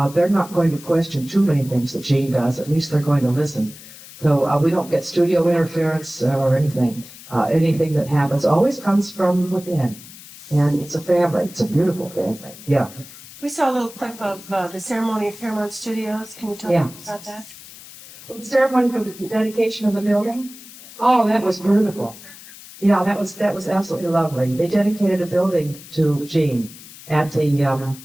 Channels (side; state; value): left; noise; hiss, 18 dB below the sound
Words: they're not going to question too many things that Gene does. At least they're going to listen. So we don't get studio interference or anything. Anything that happens always comes from within. And it's a family. It's a beautiful family. Yeah. We saw a little clip of the ceremony at Paramount Studios. Can you tell me about that? Well, the ceremony for the dedication of the building? Oh, that was beautiful. Yeah, that was absolutely lovely. They dedicated a building to Gene at the